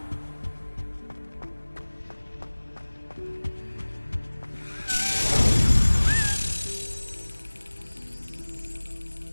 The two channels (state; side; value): inverted; both; correlation -1.00